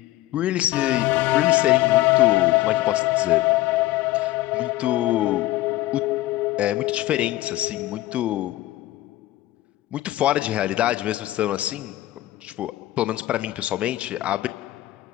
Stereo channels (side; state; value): right; quieter; 16.3 dB